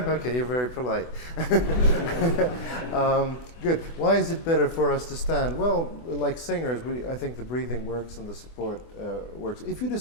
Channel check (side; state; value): right; late; 24 ms